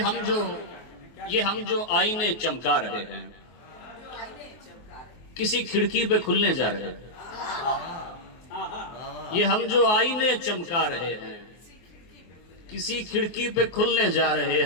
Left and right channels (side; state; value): right; late; 24 ms